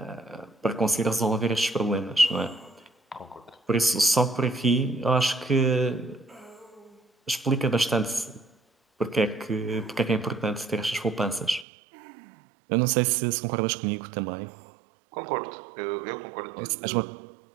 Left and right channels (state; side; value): drops out; left; at 11.7 s